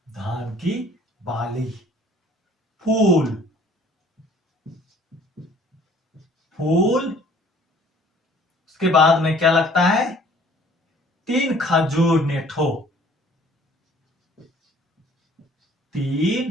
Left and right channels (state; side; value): normal; both; correlation 0.55